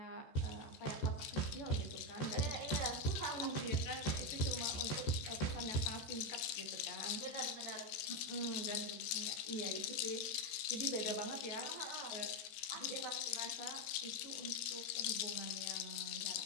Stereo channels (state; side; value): late; right; 14 ms